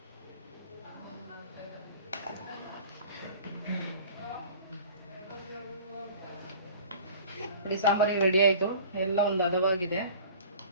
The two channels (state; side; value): inverted; both; correlation -0.44